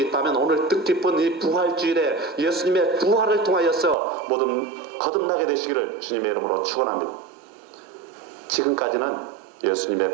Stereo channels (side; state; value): left; drops out; at 4.0 s